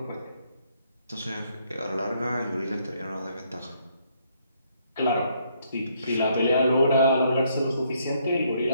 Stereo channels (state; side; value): inverted; both; correlation -0.70